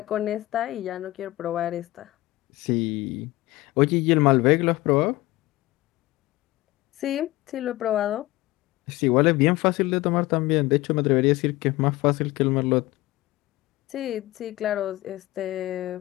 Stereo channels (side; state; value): right; quieter; 18.6 dB